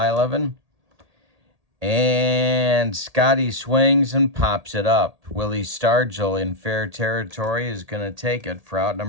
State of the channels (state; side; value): late; left; 1.8 ms